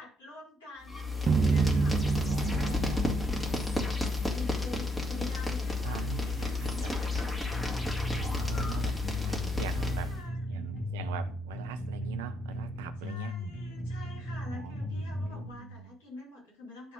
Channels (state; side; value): normal; both; correlation 0.75